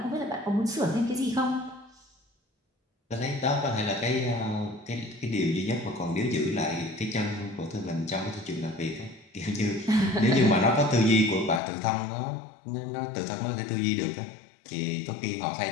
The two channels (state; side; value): drops out; right; at 11.6 s